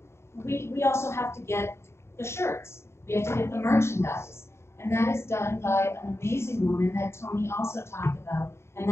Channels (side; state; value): right; late; 0.13 ms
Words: We also have to get the shirts. We have to get the merchandise. And that is done by an amazing woman that Tony also talked about, and